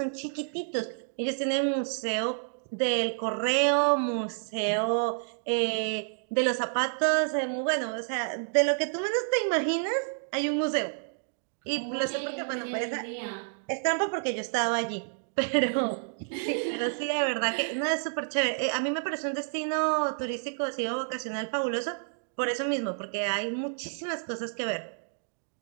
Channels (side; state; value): left; silent; digital silence